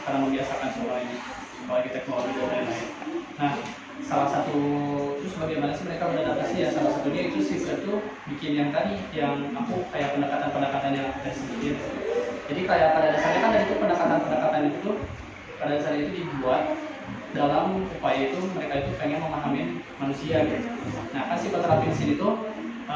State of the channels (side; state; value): both; identical; correlation 1.00